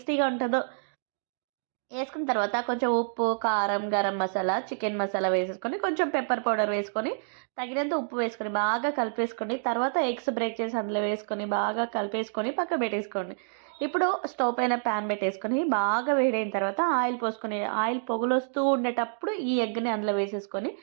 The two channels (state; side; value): silent; left; digital silence